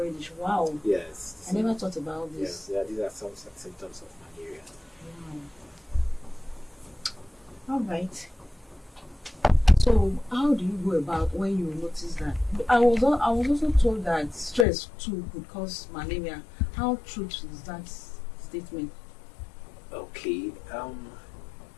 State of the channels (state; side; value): drops out; right; at 14.7 s